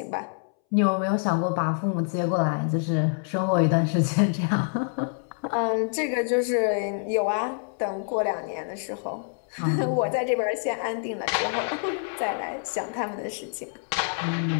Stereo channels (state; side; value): silent; right; 61 dB below the other